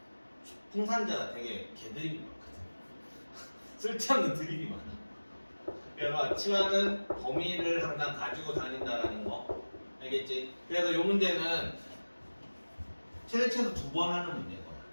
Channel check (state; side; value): inverted; both; correlation -1.00